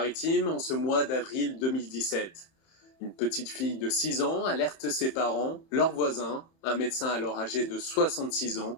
en ce mois d'avril 2017. Une petite fille de 6 ans alerte ses parents, leurs voisins, un médecin alors âgé de 66 ans,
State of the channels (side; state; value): right; late; 31 ms